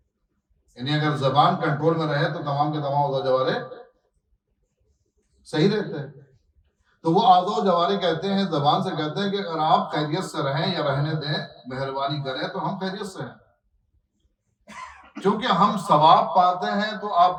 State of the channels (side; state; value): both; identical; correlation 1.00